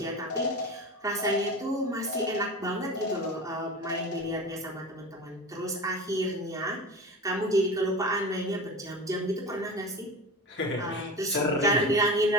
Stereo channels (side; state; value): both; normal; correlation 0.30